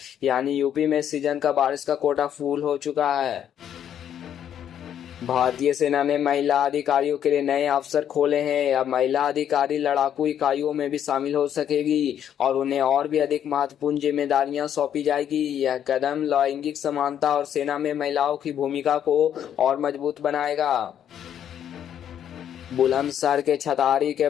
यानी यूपी में सीजन का बारिश का कोटा फुल हो चुका है। भारतीय सेना ने महिला अधिकारियों के लिए नए अवसर खोले हैं। अब महिला अधिकारी लड़ाकू इकाइयों में भी शामिल हो सकेगी और उन्हें और भी अधिक महत्वपूर्ण जिम्मेदारियां सौंपी जाएगी। यह कदम लैंगिक समानता और सेना में महिलाओं की भूमिका को और मजबूत बनाएगा। बुलंदशहर के छतारी के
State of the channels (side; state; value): right; quieter; 9.7 dB